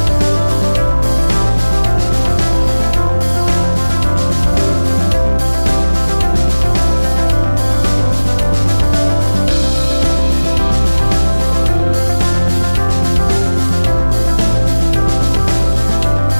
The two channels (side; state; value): both; inverted; correlation -1.00